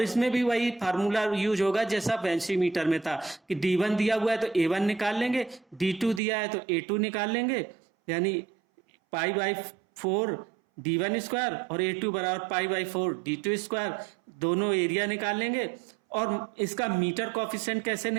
इसमें भी वही फार्मूला यूज होगा जैसा बेंची मीटर में था कि D1 दिया हुआ है तो A1 निकाल लेंगे, D2 दिया है तो A2 निकाल लेंगे, यानी π/4 D1 स्क्वायर और A2 बराबर π/4 D2 स्क्वायर, दोनों एरिया निकाल लेंगे। और इसका मीटर कोफिशिएंट कैसे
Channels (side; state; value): left; drops out; at 6.2 s